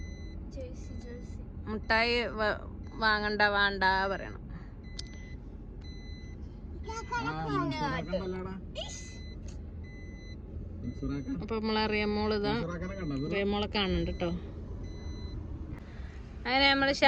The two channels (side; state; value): both; identical; correlation 1.00